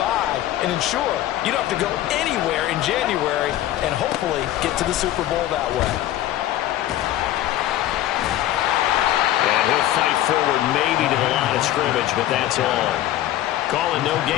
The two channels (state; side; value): quieter; right; 13.6 dB